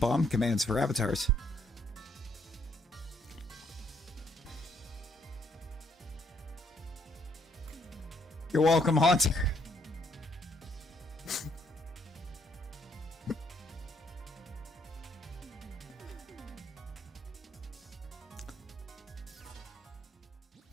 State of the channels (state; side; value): normal; both; correlation 0.70